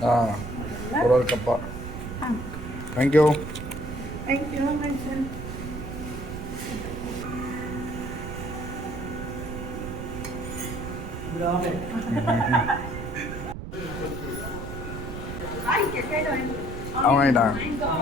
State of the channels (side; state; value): right; noise; rumble, 8 dB below the sound